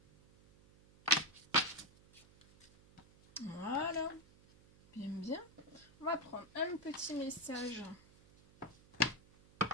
Voilà. Bien. On va prendre un petit message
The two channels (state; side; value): noise; right; hum, 25 dB below the sound